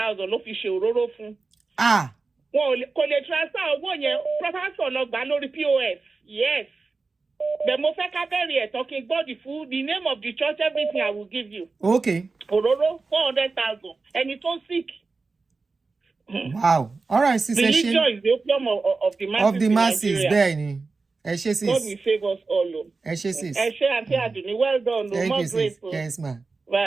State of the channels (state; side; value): quieter; left; 4.0 dB